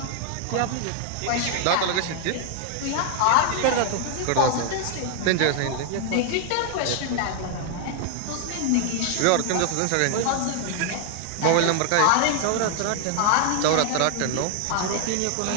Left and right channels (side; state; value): both; different; correlation 0.00